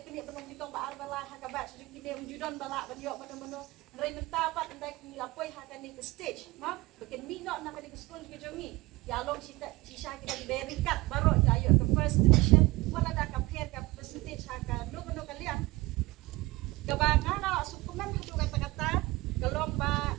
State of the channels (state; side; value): quieter; left; 21.0 dB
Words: banikong baar balai hakabat kini unjudan balak banyo mano Ray mentapat andai ni lapoi hakani ke stage ma bikin minok nak ke school ke jongi yalong sisa kita diberikat baru ayo ke first division wala dah compare ke percentage haka no kalian kebangan ala sukuman hatu kata-kata kalong ba